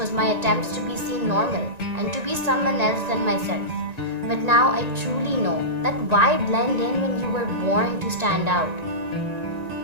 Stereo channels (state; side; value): late; left; 1.9 ms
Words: my attempts to be seen normal and to be someone else than myself. But now I truly know that why blend in when you were born to stand out?